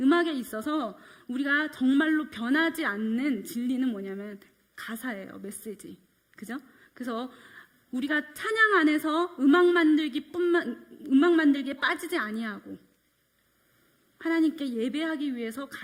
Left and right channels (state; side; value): identical; both; correlation 1.00